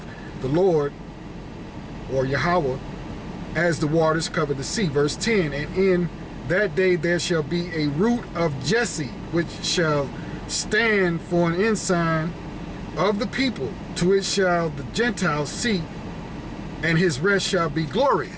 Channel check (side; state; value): both; identical; correlation 1.00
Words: the Lord, or Yahweh, as the waters cover the sea. Verse 10, and in that day there shall be a root of Jesse, which shall stand for an ensign of the people. To it shall the Gentiles seek, and his rest shall be